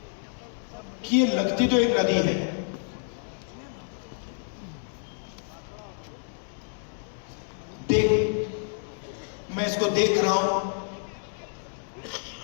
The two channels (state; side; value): silent; right; digital silence